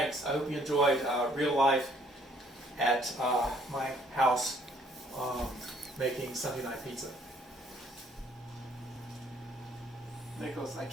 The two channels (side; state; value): both; normal; correlation 0.62